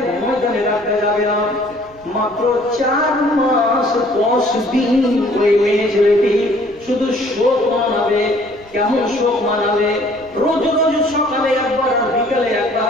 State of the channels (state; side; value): noise; right; rumble, 26 dB below the sound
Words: ময়দানে রাখতে যাবে না। মাত্র 4 মাস 10 দিন ওই মেয়ে ছেলেটি শুধু শোক মানাবে। কেমন শোক মানাবে? রোজ রোজ সকালে একবার আর বিকালে